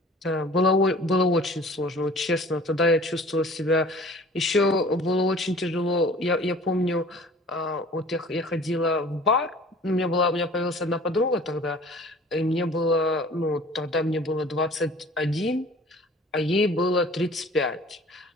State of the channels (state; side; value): normal; both; correlation 0.47